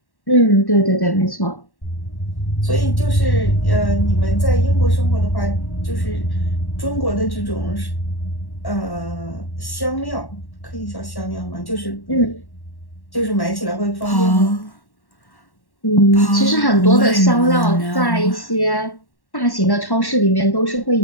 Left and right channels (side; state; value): right; late; 1.1 ms